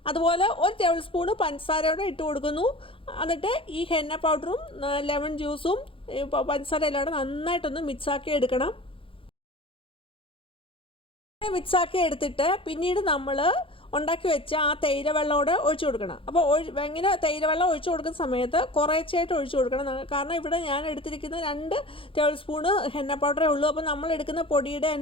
അതുപോലെ 1 ടേബിൾ സ്പൂണ് പഞ്ചസാരയോടെ ഇട്ട് കൊടുക്കുന്നു. എന്നിട്ട് ഈ ഹെന്ന പൗഡറും ലെമൺ ജ്യൂസും പഞ്ചസാര എല്ലാം നന്നായിട്ടൊന്ന് മിക്സാക്കി എടുക്കണം. മിക്സാക്കി എടുത്തിട്ട് പിന്നീട് നമ്മൾ ഉണ്ടാക്കി വെച്ച ആ തേയില വെള്ളമോടെ ഒഴിച്ചു കൊടുക്കണം. അപ്പോൾ ഇങ്ങനെ തേയില വെള്ളം ഒഴിച്ചു കൊടുക്കുന്ന സമയത്ത് കുറേശ്ശായിട്ട് ഒഴിച്ചു കൊടുക്കണം. കാരണം ഇവിടെ ഞാൻ എടുത്തിരിക്കുന്ന 2 ടേബിൾ സ്പൂണ് ഹെന്ന പൗഡറേ ഉള്ളൂ. അപ്പോൾ നമ്മൾ എടുക്കുന്ന പൊടിയുടെ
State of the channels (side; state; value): right; late; 0.26 ms